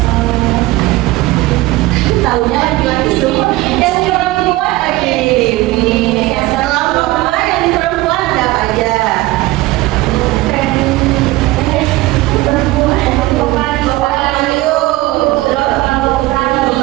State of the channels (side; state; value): left; quieter; 18.8 dB